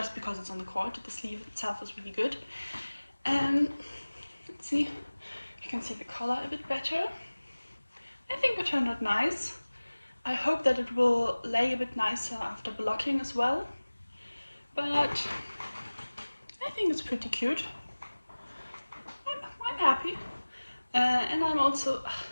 because it's on the cord, the sleeve itself is really good. Let's see, you can see the collar a bit better. I think it turned out nice. I hope that it will lay a bit nicer after blocking as well, but I think it's pretty cute. I'm happy. And I'm also,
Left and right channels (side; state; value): both; inverted; correlation -1.00